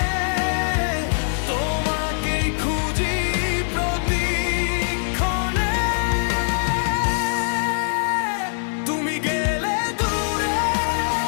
তোমাকেই খুঁজি প্রতিক্ষণে। তুমি গেলে দূরে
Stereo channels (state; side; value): silent; right; digital silence